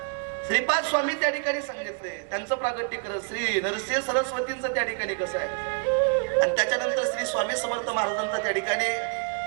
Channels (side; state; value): left; quieter; 39.8 dB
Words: श्रीपाद स्वामी त्या ठिकाणी सांगितले, त्यांचं प्रागट्य करत श्री नरसिंह सरस्वतींचं त्या ठिकाणी कसं आहे आणि त्याच्यानंतर श्री स्वामी समर्थ महाराजांचा त्या ठिकाणी